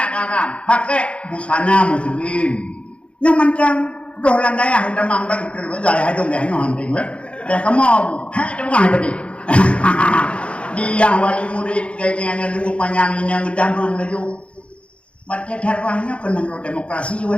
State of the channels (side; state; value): right; late; 0.060 ms